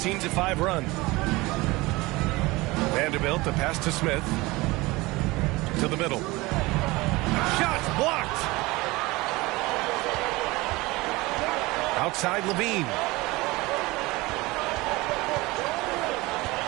run. Vanderbilt, the pass to Smith. To the middle. Shots blocked. Outside Levine.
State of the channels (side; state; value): left; quieter; 21.7 dB